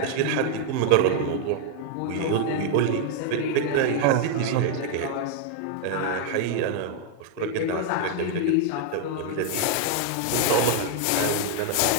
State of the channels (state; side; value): different; both; correlation 0.00